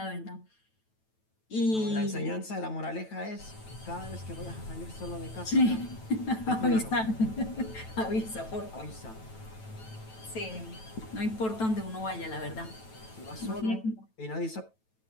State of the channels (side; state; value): right; late; 9.1 ms